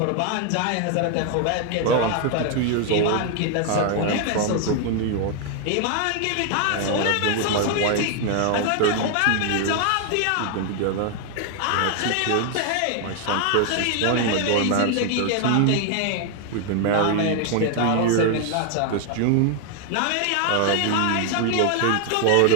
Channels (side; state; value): both; different; correlation 0.00